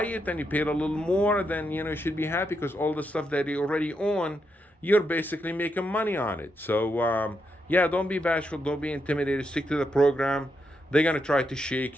it and you paid a little more, then you should be happy, because all the stuff that you already own, you're basically making money on it. So yeah, don't be bashful, don't be intimidated, stick to the program. They're gonna try to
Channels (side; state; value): both; normal; correlation 0.82